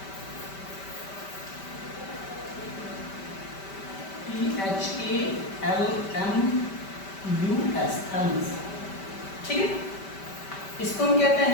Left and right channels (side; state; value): right; late; 5.1 ms